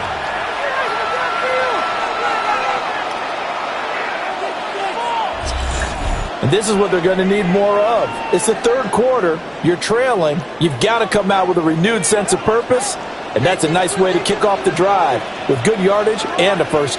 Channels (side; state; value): both; identical; correlation 1.00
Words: And this is what they're going to need more of. It's the third quarter. You're trailing. You've got to come out with a renewed sense of purpose. And that's a nice way to kick off the drive with good yardage and a first